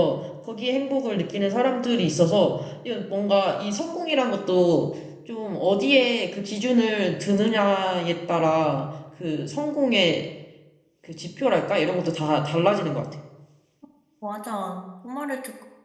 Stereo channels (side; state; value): both; identical; correlation 1.00